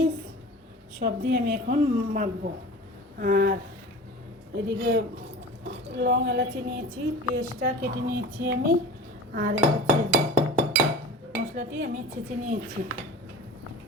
সব দিয়ে আমি এখন মাখবো। আর এদিকে লং এলাচি নিয়েছি, পেঁয়াজটা কেটে নিয়েছি আমি। আর হচ্ছে মশলাটি আমি ছেঁচে নিয়েছি।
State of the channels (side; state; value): both; normal; correlation 0.37